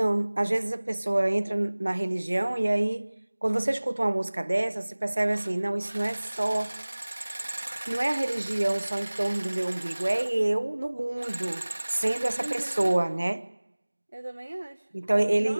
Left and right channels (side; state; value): both; inverted; correlation -1.00